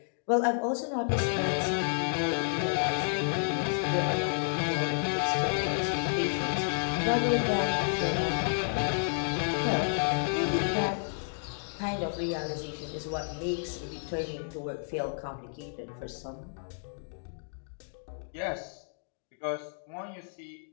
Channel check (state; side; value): silent; right; digital silence